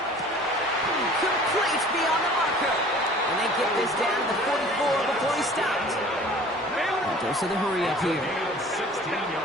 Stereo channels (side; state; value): both; normal; correlation 0.47